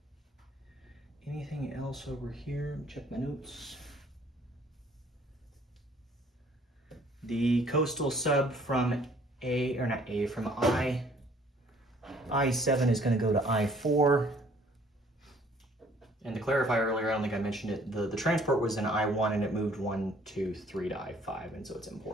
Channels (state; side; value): normal; both; correlation 0.59